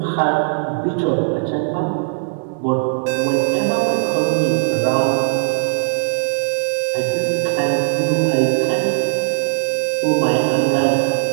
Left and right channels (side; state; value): left; silent; digital silence